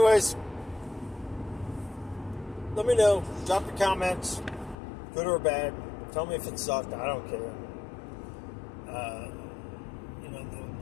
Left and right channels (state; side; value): drops out; right; at 4.8 s